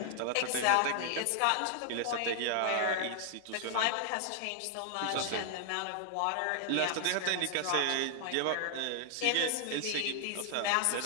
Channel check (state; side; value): different; both; correlation 0.00